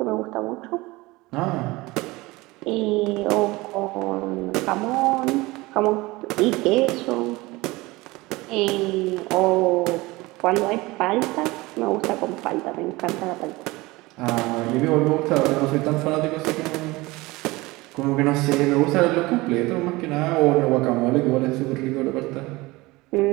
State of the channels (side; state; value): left; quieter; 21.5 dB